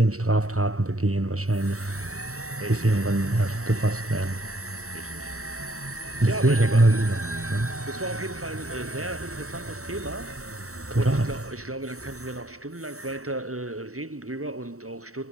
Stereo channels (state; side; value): late; left; 0.64 ms